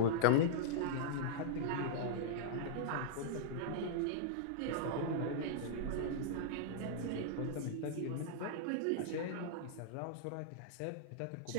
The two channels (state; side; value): different; both; correlation -0.02